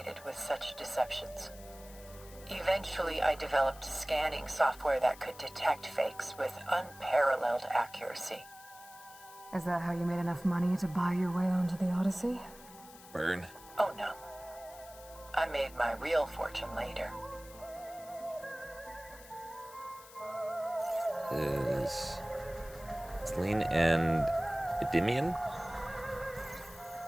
with such deceptions. Eventually, I developed scanning software that could detect fakes with unparalleled accuracy. Is that how you made enough money to buy your way onto the Odyssey? Burn. Oh no. I made my real fortune later. Is Selene and Endymion?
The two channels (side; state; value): left; noise; hiss, 19 dB below the sound